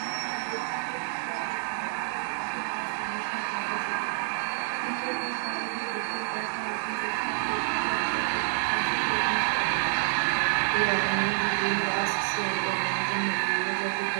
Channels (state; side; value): silent; left; digital silence